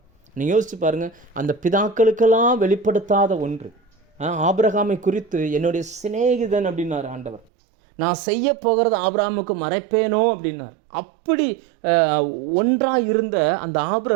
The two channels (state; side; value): drops out; left; at 7.5 s